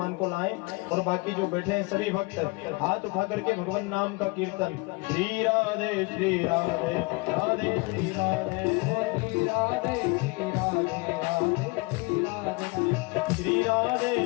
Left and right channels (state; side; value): quieter; right; 26.6 dB